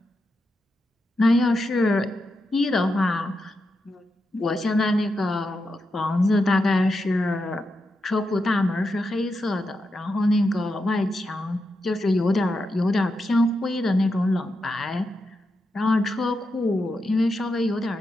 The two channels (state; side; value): normal; both; correlation 0.87